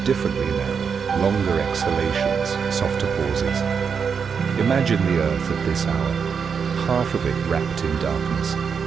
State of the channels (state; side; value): quieter; left; 6.3 dB